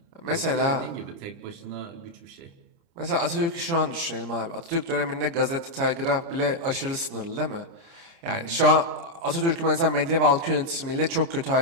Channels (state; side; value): late; left; 29 ms